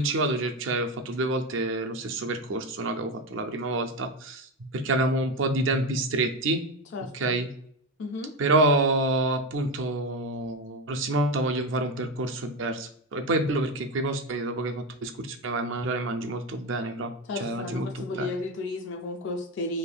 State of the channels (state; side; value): normal; both; correlation 0.15